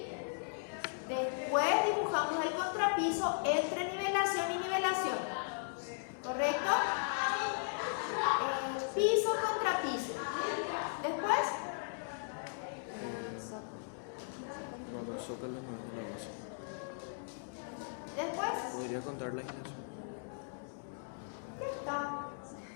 Después dibujamos el contrapiso entre nivelación y nivelación. ¿Correcto? Piso, contrapiso. Después, No, los zócalos no es la base. después, Podría contar la iglesia. ya está.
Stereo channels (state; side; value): silent; right; digital silence